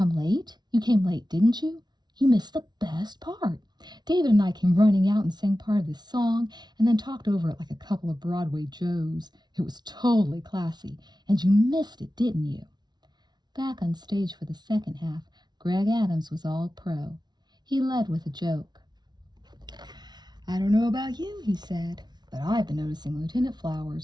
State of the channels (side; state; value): left; late; 0.20 ms